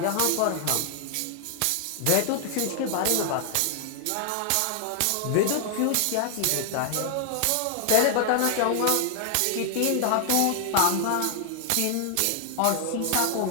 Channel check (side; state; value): both; different; correlation 0.00